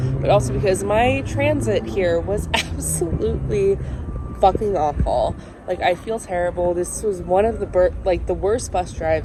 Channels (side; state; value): both; identical; correlation 1.00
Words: also because my transit here was absolutely fucking awful. I feel terrible. This was one of the worst bus